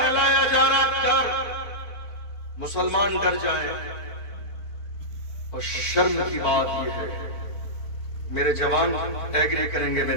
جا رہا، ڈر، مسلمان ڈر جائیں۔ اور شرم کی بات یہ ہے، میرے جوان ایگری کریں گے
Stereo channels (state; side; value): late; right; 4.5 ms